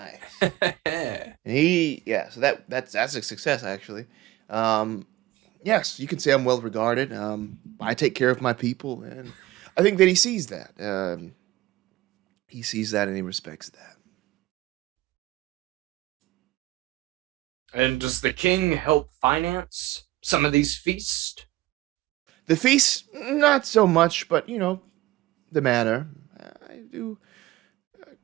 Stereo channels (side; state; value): left; quieter; 17.1 dB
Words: And so that's a success actually. Yes, you can say I'm well regarded. I take care of my people, and I think that he sees that. He sees that and he respects that. And does the king help finance some of these feasts? The feast, not so much, but the manor.